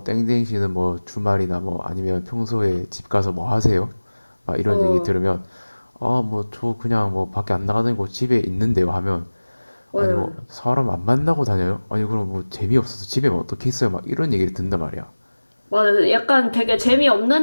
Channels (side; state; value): both; inverted; correlation -1.00